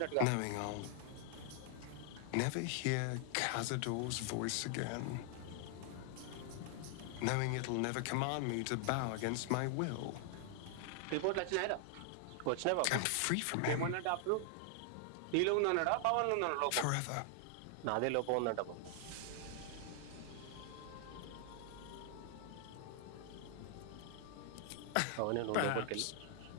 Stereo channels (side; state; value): both; different; correlation 0.00